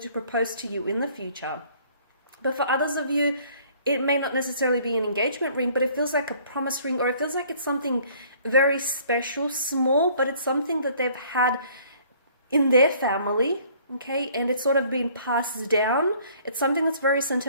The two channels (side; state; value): both; inverted; correlation -0.57